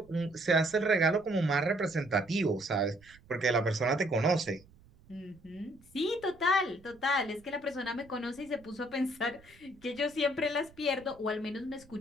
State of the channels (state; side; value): noise; right; rumble, 26 dB below the sound